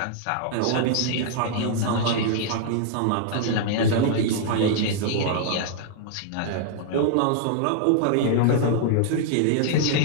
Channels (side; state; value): both; different; correlation -0.01